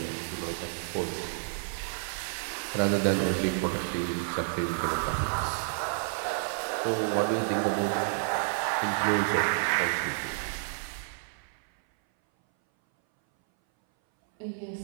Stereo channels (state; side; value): silent; left; 58 dB below the other